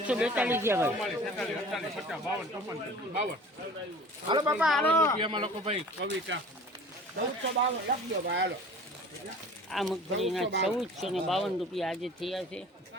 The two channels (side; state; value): both; normal; correlation 0.45